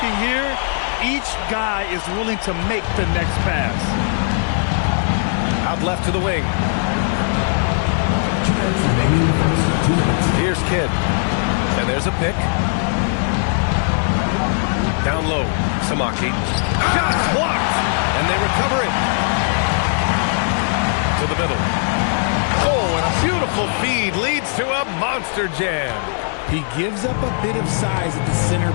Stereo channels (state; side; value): silent; right; 66 dB below the other